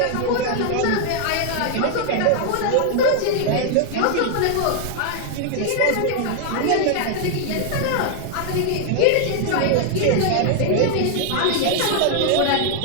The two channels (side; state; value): both; different; correlation 0.00